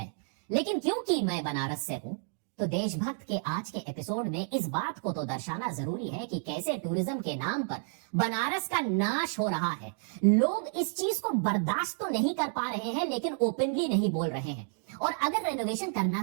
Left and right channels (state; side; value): silent; left; 56 dB below the other